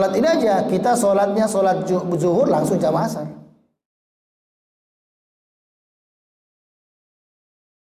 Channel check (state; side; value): identical; both; correlation 1.00